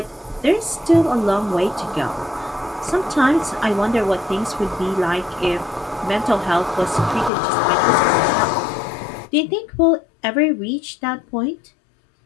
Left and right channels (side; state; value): right; drops out; at 7.3 s